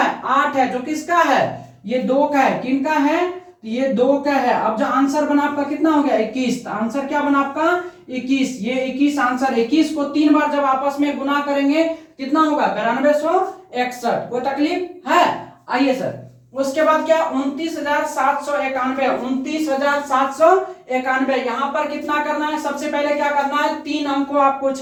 8 है, जो किसका है, ये 2 का है। किनका है, ये 2 का है। अब जो आंसर बना आपका कितना हो गया, 21। आंसर क्या बना आपका, 21। ये 21 आंसर। 21 को 3 बार जब आपस में गुना करेंगे कितना होगा, 9261। कोई तकलीफ है। आइए सर उसके बाद क्या, 29,791, 29,791। यहां पर कितना करना है, सबसे पहले क्या करना है, 3 अंक को आपको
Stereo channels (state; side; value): identical; both; correlation 1.00